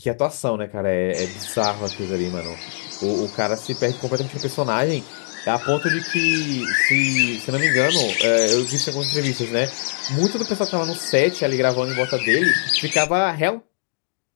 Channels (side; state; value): right; silent; digital silence